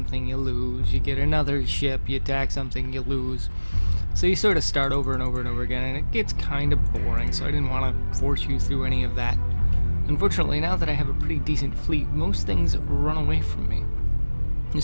you lose. You get another ship, you attack something, you lose. So you sort of start over and over and over again, and it gets kind of boring, so I didn't want to force you through any of that. Unfortunately, now that I have a pretty decent fleet, most things run away from me. The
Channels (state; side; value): inverted; both; correlation -1.00